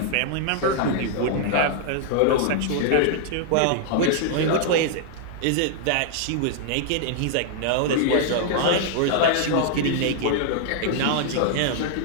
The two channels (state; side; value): different; both; correlation -0.01